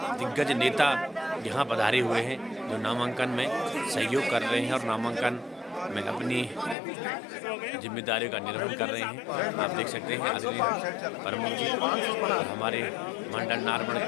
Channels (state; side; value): drops out; right; at 6.8 s